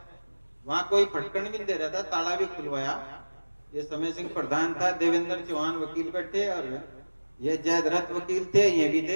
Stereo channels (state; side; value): inverted; both; correlation -1.00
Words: वहां कोई फटकन भी नहीं दे रहा था, ताला भी खुलवाया। ये समय सिंह प्रधान था, देवेंद्र चौहान वकील बैठे और ये जयद्रथ वकील थे, ये भी